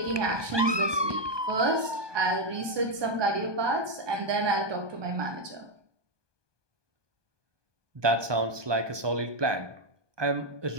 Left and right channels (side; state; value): left; late; 1.2 ms